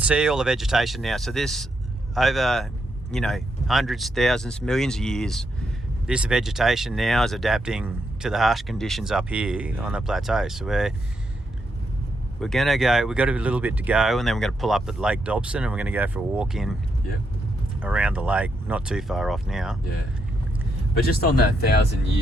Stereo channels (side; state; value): both; normal; correlation 0.80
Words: all the vegetation now. So this, over, hundreds, thousands, millions of years, this vegetation now is adapting to the harsh conditions up here on the plateau. So we're going to go, we've got a little bit to go, and then we're going to pull up at Lake Dobson, and we're going to go for a walk in around the lake, not too far off now. Yeah. But just on that